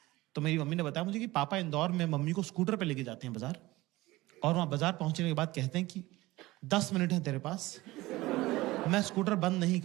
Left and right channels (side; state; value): left; quieter; 19.0 dB